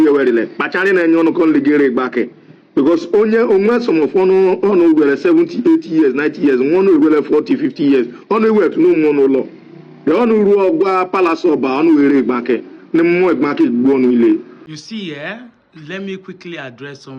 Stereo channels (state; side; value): identical; both; correlation 1.00